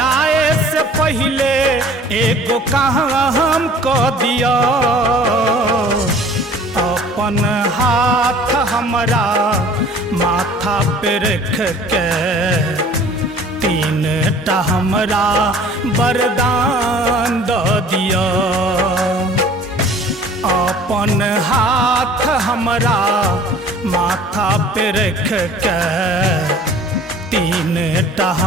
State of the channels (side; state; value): both; normal; correlation 0.49